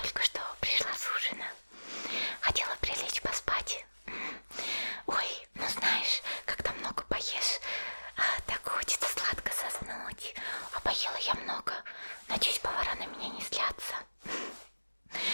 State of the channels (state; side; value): inverted; both; correlation -1.00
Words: что пришла с ужина. Хотела прилечь поспать. Ой, ну знаешь, когда много поешь, так хочется сладко заснуть. А поела я много. Надеюсь, повара на меня не злятся.